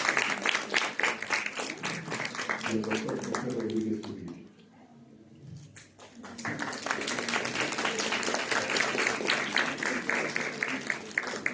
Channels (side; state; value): both; identical; correlation 1.00